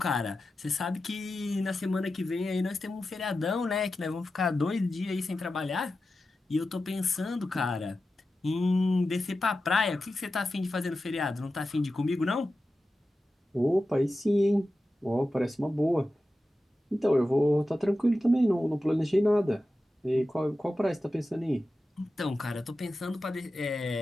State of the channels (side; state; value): both; normal; correlation 0.92